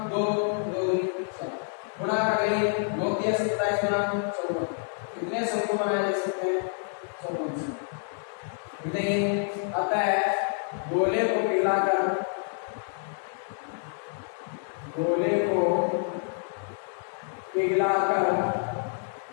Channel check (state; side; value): silent; right; 59 dB below the other